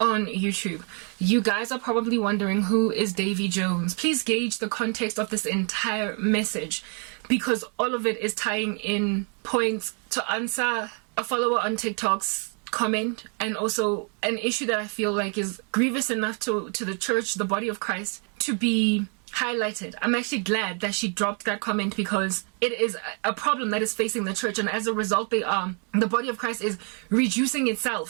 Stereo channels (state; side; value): quieter; left; 39.4 dB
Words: YouTube. You guys are probably wondering, who is Davy Jones? Please gauge the context of this entire message, because all of it is tying in points to answer a follower on TikTok's comment, and also an issue that I feel like is grievous enough to the church, the body of Christ, to be highlighted. I'm actually glad that she dropped that comment, because it is a problem that is facing the church, and as a result the body of Christ is reducing